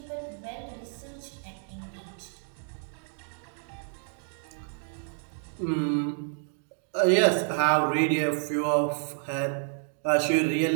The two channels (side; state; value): left; silent; 58 dB below the other